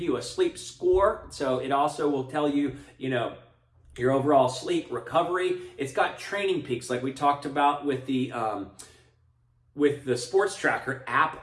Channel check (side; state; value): both; identical; correlation 1.00